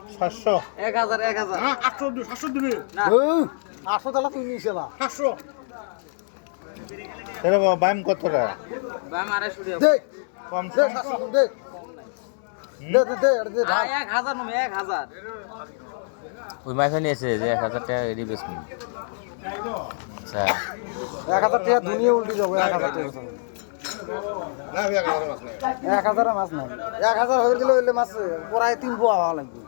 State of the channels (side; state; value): right; silent; digital silence